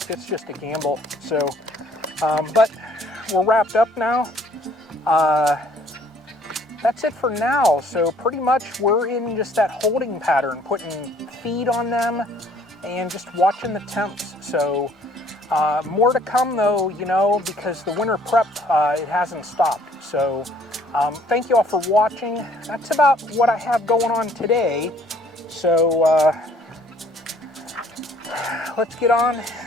it's just a gamble. So, but we're wrapped up now. That's it for now. So pretty much we're in just that holding pattern, putting feed on them and just watching the temps. So more to come though, you know, because the winter prep, it hasn't stopped. So thank you all for watching. That's about what I have going on today. So let's get on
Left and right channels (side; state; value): both; normal; correlation 0.59